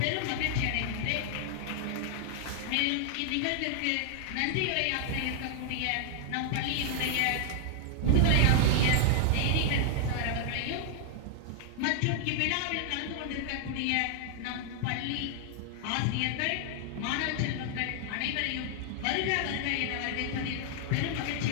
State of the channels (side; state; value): both; different; correlation 0.00